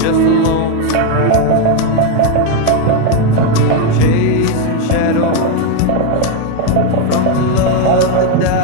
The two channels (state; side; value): different; both; correlation 0.02